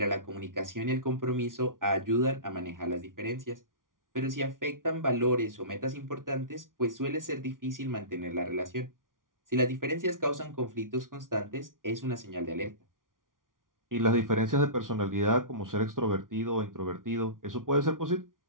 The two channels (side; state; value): left; late; 0.89 ms